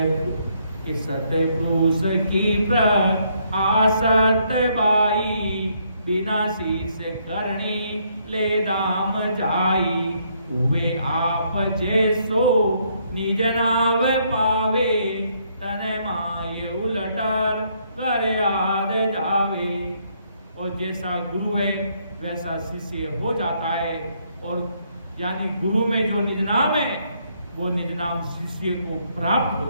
सत्य पुरुष की आसत बाई, बिना शीस करणी ले दाम जाई। हुए आप जैसो निज नाव पावे, तन माय उलटर कर याद जावे। और जैसा गुरु है वैसा शिष्य हो जाता है। और यानी गुरु में जो निज नाम है वो निज नाम शिष्य को प्राप्त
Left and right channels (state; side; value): inverted; both; correlation -0.71